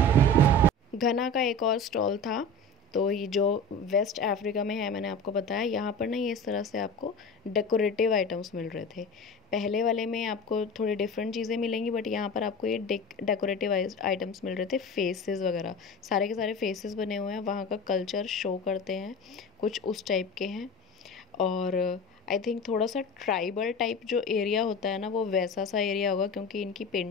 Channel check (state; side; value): normal; both; correlation 0.32